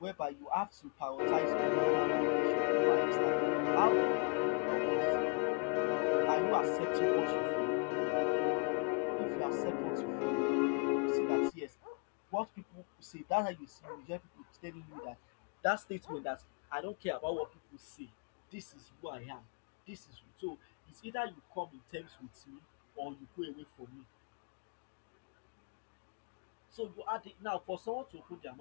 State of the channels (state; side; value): quieter; right; 37.6 dB